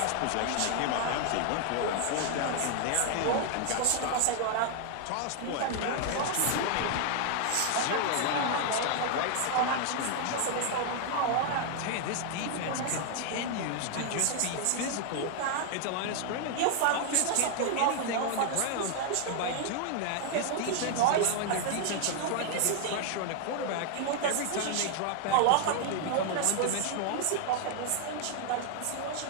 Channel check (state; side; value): different; both; correlation 0.00